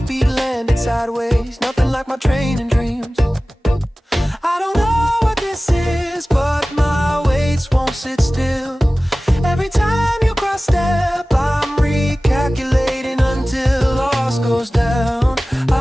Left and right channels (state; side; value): normal; both; correlation 0.97